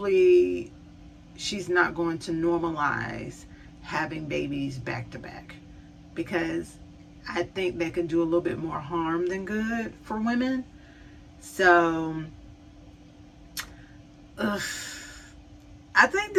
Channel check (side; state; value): both; identical; correlation 1.00